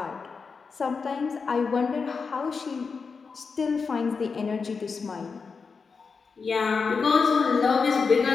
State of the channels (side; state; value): right; quieter; 5.1 dB